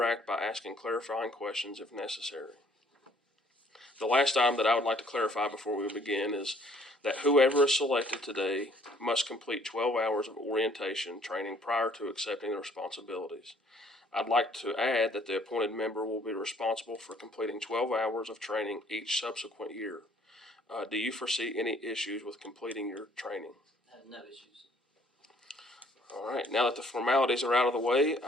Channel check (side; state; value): both; normal; correlation 0.61